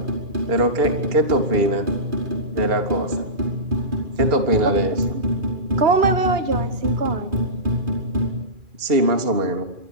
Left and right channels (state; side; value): late; left; 2.4 ms